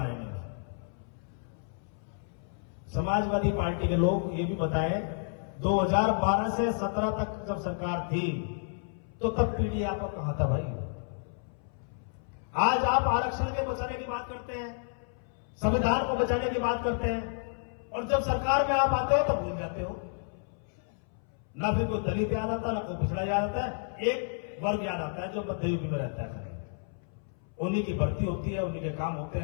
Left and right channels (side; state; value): right; silent; 57 dB below the other